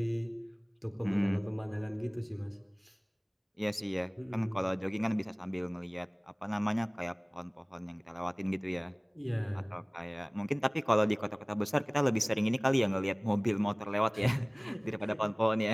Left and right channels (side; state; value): both; identical; correlation 1.00